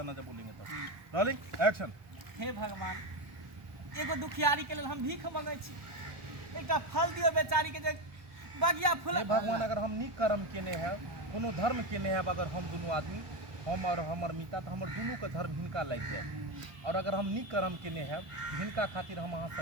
जब बोलेंगे तब रोलिंग एक्शन। हे भगवान एगो दुखियारी के लेल हम भीख मांगै छी एकटा फल दियो बेचारी के जे बगिया फूल। हे भगवान अगर हम नीक कर्म केने हैं कोनो धर्म केने हैं अगर हम दोनों आदमी हम और हमर मिता तो हमर दोनों के धर्म हिनका लग जाए और अगर हम नीक कर्म केने हैं हिनका खातिर हम अहाँ से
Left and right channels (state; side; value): late; left; 1.2 ms